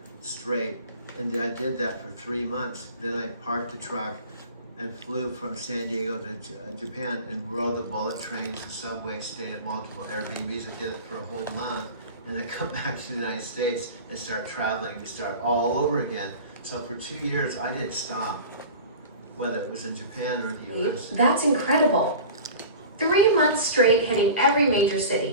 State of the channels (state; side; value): inverted; both; correlation -0.37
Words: straight. And then I did that for 3 months. Then I parked the truck and flew from San Diego to Japan and rode the bullet trains, the subway, stayed at multiple Airbnbs. I did it for a whole month. And I come back to the United States and start traveling, start all over again. So for 2 years, I didn't stop, whether it was in Japan or in the US. That's incredible. 3 months straight hitting every major